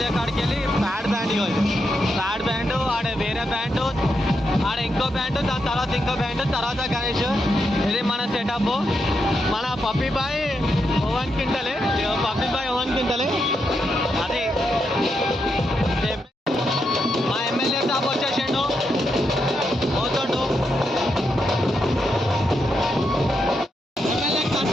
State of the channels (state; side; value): normal; both; correlation 0.83